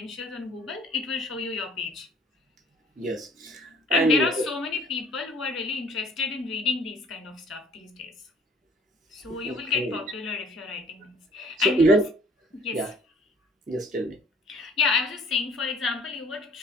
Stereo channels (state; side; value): normal; both; correlation 0.55